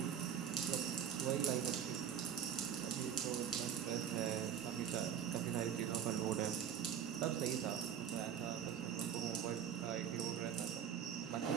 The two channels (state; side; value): quieter; left; 8.7 dB